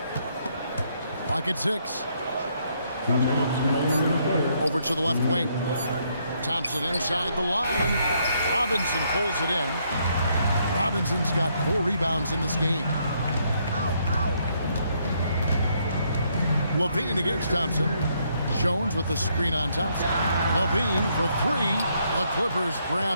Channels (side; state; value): both; inverted; correlation -0.72